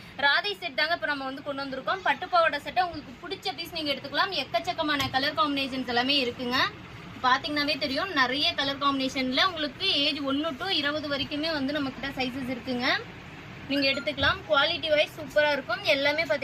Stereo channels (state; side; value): identical; both; correlation 1.00